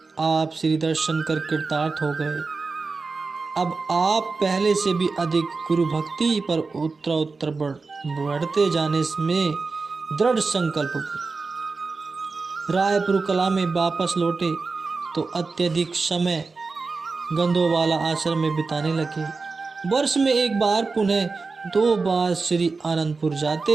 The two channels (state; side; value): quieter; left; 4.2 dB